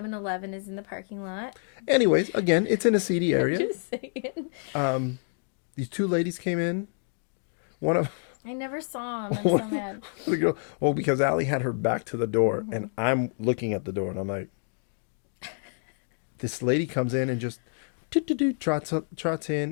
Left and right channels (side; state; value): right; silent; 59 dB below the other